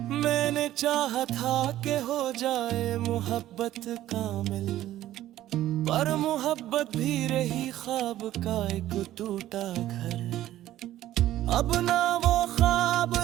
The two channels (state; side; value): quieter; left; 13.7 dB